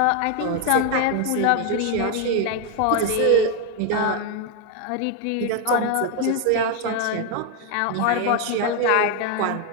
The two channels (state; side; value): different; both; correlation 0.01